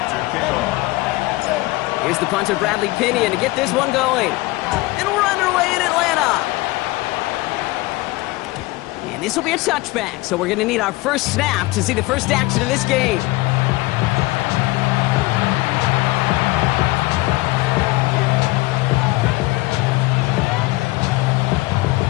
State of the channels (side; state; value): right; quieter; 21.0 dB